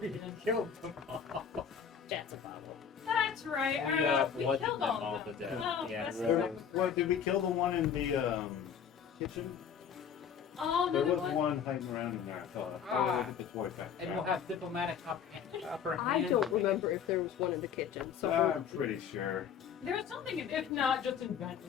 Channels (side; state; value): right; quieter; 7.7 dB